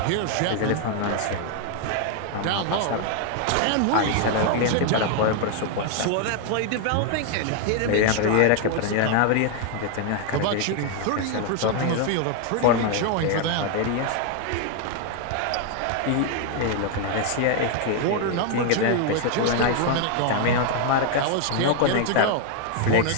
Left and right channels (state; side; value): different; both; correlation 0.00